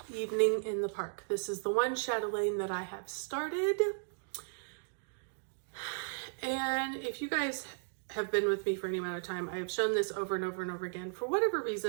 Evening in the Park. This is the one chatelaine that I have started. And if you guys have been with me for any amount of time, I have shown this over and over and over again. For whatever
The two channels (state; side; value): silent; left; digital silence